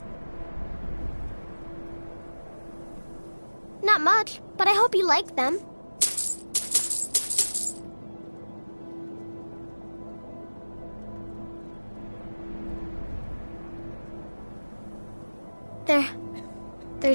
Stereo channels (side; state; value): both; inverted; correlation -1.00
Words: Not much, but I hope you like them. They're